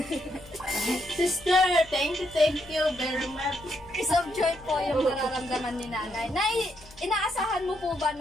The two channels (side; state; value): left; noise; hum, 23 dB below the sound